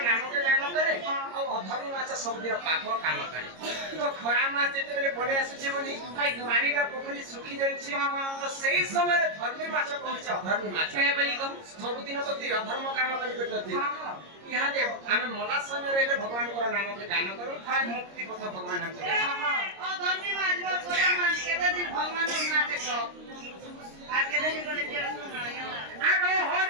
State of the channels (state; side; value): late; left; 26 ms